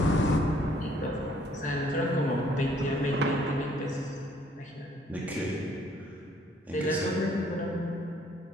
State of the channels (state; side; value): normal; both; correlation 0.63